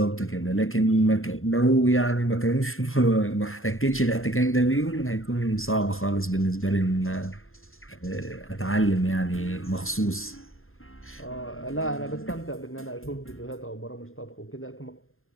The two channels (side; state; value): right; late; 0.61 ms